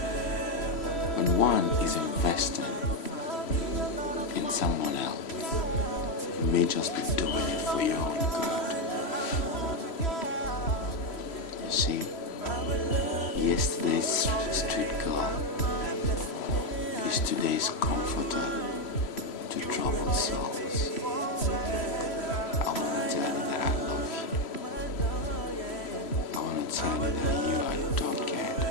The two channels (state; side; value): late; right; 3.0 ms